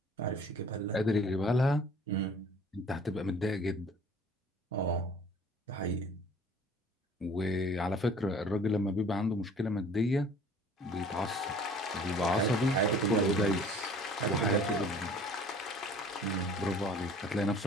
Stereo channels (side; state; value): both; normal; correlation 0.50